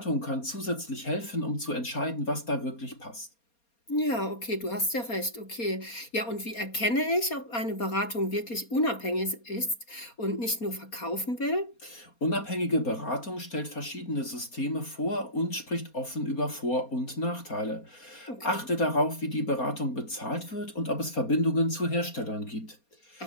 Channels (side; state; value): right; late; 4.2 ms